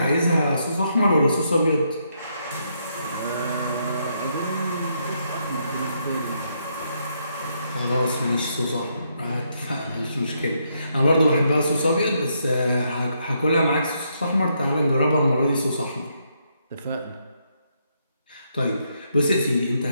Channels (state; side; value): inverted; both; correlation -0.76